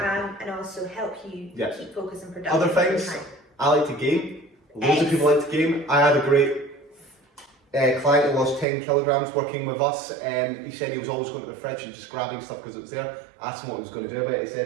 also help you keep focus and productive. Other things, I like to game. Loads of people like to game. I had a great client who lost 10 kilograms working with us. He said he was always going to the fridge and just grabbing stuff because it was there. I asked him what he was going to do about it. He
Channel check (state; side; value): drops out; left; at 8.7 s